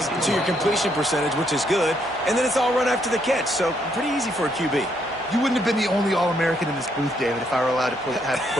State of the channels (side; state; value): both; normal; correlation 0.73